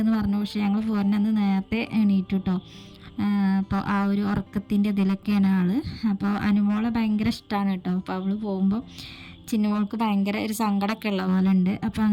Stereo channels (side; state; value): both; identical; correlation 1.00